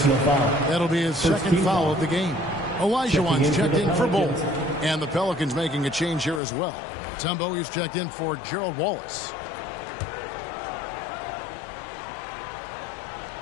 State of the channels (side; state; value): right; drops out; at 6.4 s